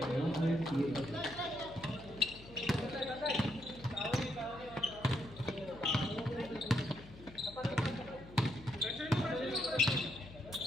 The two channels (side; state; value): left; noise; hum, 18 dB below the sound